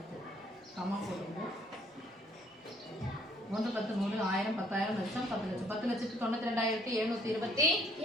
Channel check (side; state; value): both; normal; correlation 0.62